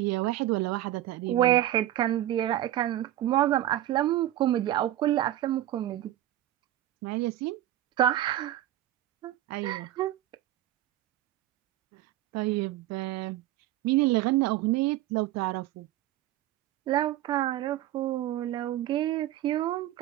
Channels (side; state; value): left; quieter; 13.7 dB